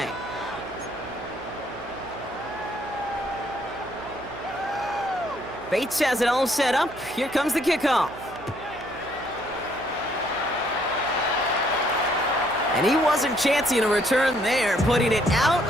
Bates has it all set up. Here comes the kickoff. And he wasn't chancing a return there, putting it out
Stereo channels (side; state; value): right; noise; hum, 17 dB below the sound